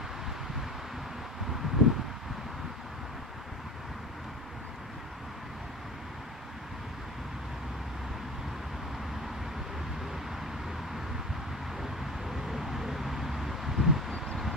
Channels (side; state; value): both; normal; correlation 0.35